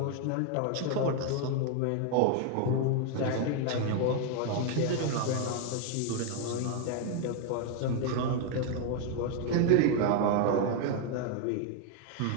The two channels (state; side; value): different; both; correlation 0.00